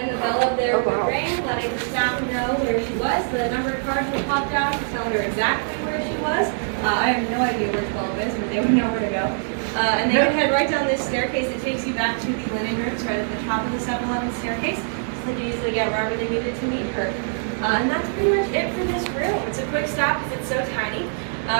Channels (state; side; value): silent; left; digital silence